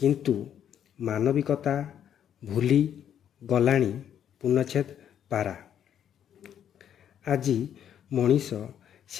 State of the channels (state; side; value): quieter; right; 9.5 dB